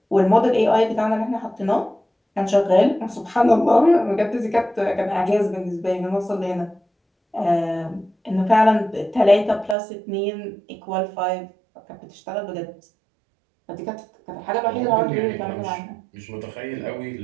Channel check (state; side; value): drops out; left; at 9.8 s